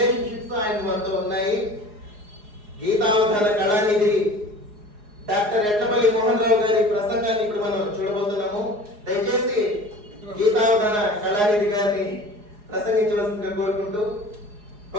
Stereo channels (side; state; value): left; late; 4.8 ms